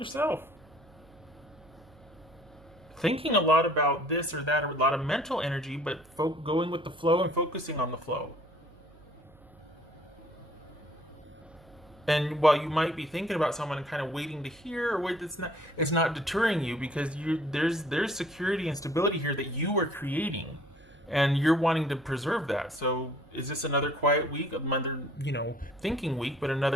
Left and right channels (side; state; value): right; noise; hum, 26 dB below the sound